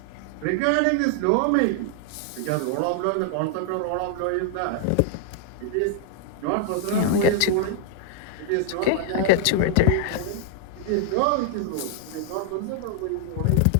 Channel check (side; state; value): both; different; correlation -0.01